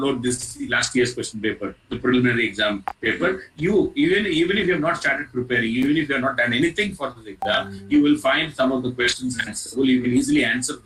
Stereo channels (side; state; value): both; identical; correlation 1.00